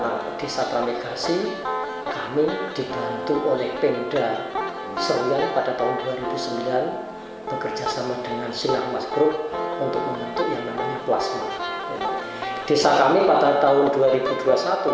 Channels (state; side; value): identical; both; correlation 1.00